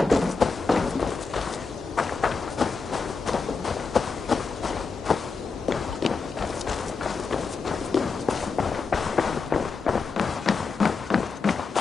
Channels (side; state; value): right; quieter; 4.7 dB